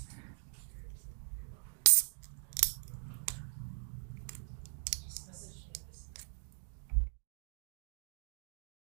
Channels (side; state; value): left; silent; digital silence